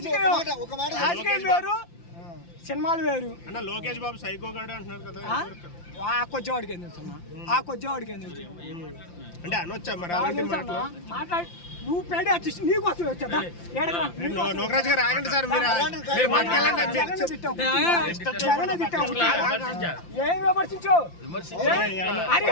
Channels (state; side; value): late; right; 5.8 ms